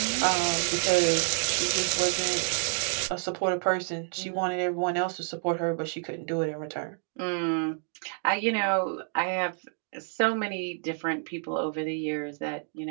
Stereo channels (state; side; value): silent; left; 59 dB below the other